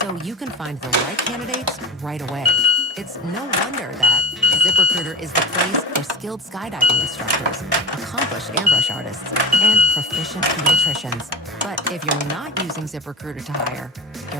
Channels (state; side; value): normal; both; correlation 0.27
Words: so you can find the right candidates right away. It's no wonder that ZipRecruiter is the place for skilled skydiving instructors, accomplished airbrush artists, and proficient pediatricians. But if you're not using ZipRecruiter to hire,